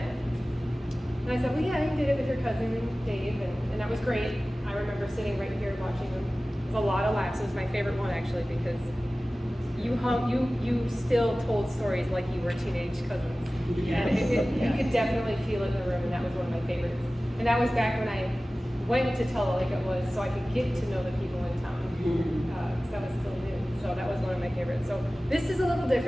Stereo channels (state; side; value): normal; both; correlation 0.97